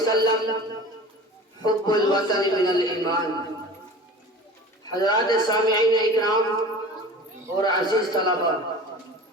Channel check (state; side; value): normal; both; correlation 0.38